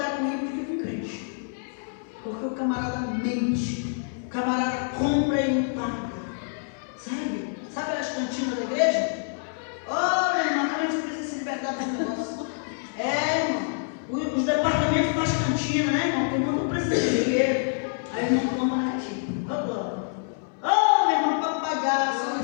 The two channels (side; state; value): right; silent; 59 dB below the other